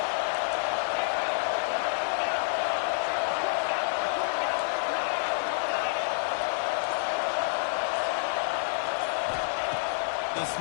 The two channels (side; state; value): right; silent; digital silence